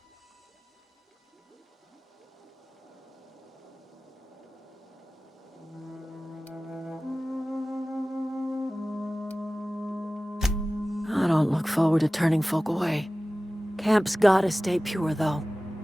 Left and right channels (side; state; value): both; normal; correlation 0.97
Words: I don't look forward to turning folk away. Camp's gotta stay pure, though.